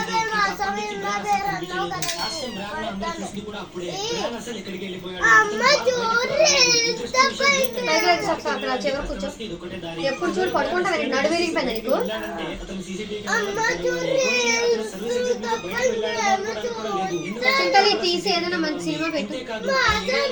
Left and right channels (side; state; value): both; identical; correlation 1.00